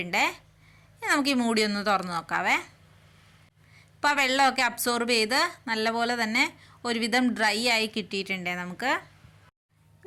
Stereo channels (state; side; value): identical; both; correlation 1.00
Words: നമുക്ക് ഈ മൂടി ഒന്ന് തുറന്ന് നോക്കാവേ. ഇപ്പോൾ ആ വെള്ളമൊക്കെ അബ്സോർബ് ചെയ്ത് നല്ലപോലെ തന്നെ ഒരുവിധം ഡ്രൈ ആയി കിട്ടിയിട്ടുണ്ട് നമുക്ക്.